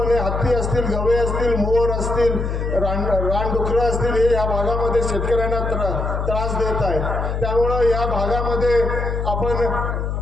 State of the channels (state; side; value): noise; left; hum, 2 dB below the sound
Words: हत्ती असतील, गवे असतील, मोर असतील, रानडुकरं असतील, हे या भागामध्ये शेतकऱ्यांना त्रास देत आहेत. त्यामुळं या भागामध्ये आपण